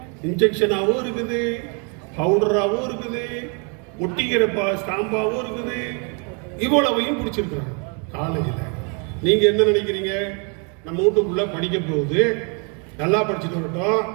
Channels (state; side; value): quieter; left; 36.3 dB